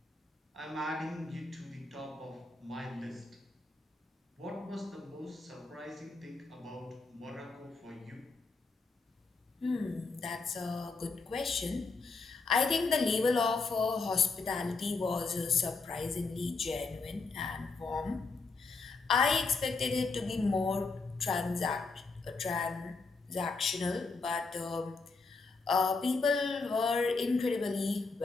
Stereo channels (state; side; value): quieter; right; 4.0 dB